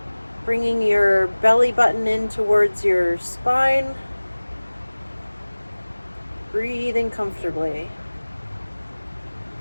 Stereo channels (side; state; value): both; inverted; correlation -1.00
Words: bringing your belly button in towards your spine, breathing comfortably.